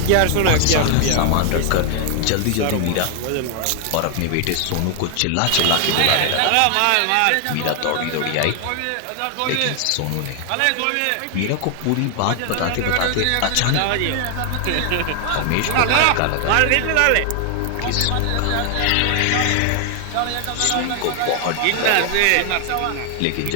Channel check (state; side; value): different; both; correlation 0.00